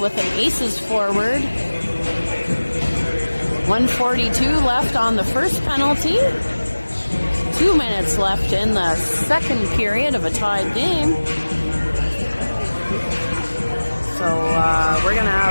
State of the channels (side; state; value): both; inverted; correlation -1.00